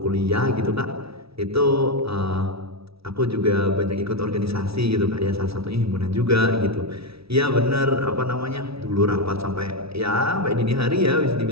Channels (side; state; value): left; late; 0.76 ms